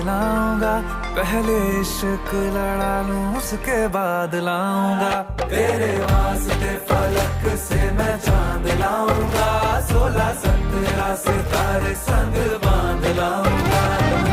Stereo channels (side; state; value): both; identical; correlation 1.00